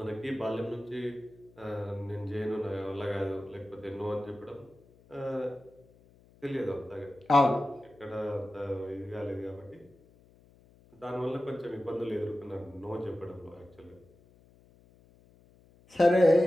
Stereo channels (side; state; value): left; noise; hum, 28 dB below the sound